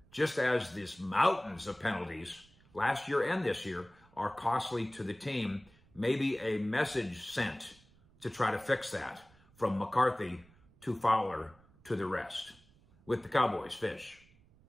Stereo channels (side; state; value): right; noise; rumble, 28 dB below the sound